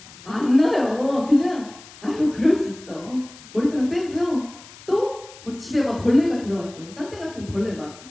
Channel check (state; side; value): noise; left; hiss, 20 dB below the sound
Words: 안 나요. 그냥 아유 그럴 수 있어. 머리카락 빼고요. 또 뭐 집에 막 벌레가 들어왔어요. 딴 데 같은 벌레